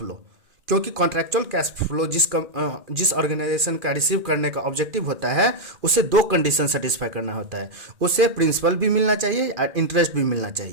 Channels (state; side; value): late; left; 2.4 ms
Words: क्योंकि कॉन्ट्रैक्चुअल कैश फ्लो जिस ऑर्गेनाइजेशन का रिसीव करने का ऑब्जेक्टिव होता है, उसे 2 कंडीशन सेटिस्फाई करना होता है, उसे प्रिंसिपल भी मिलना चाहिए और इंटरेस्ट भी मिलना